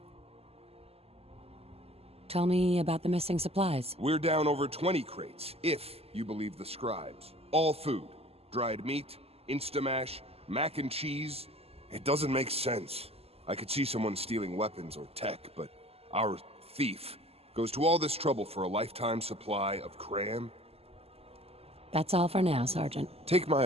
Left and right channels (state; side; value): late; left; 0.29 ms